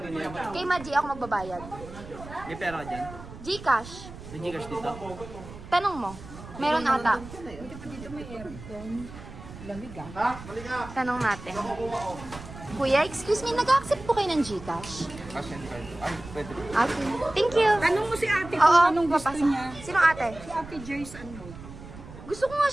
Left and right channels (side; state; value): right; noise; rumble, 15 dB below the sound